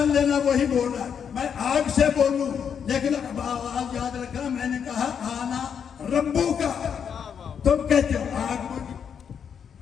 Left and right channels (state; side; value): quieter; right; 7.5 dB